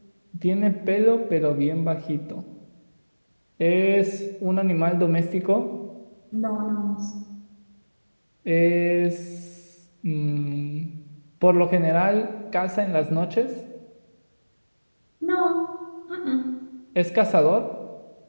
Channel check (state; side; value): inverted; both; correlation -1.00